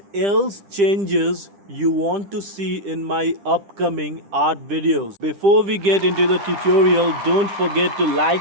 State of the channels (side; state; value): left; late; 10 ms